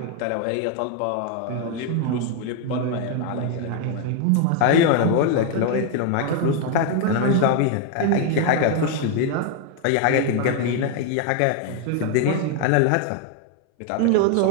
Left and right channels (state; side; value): different; both; correlation 0.00